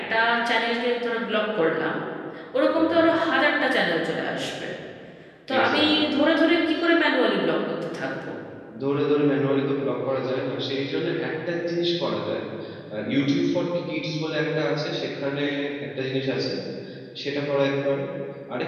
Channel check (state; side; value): identical; both; correlation 1.00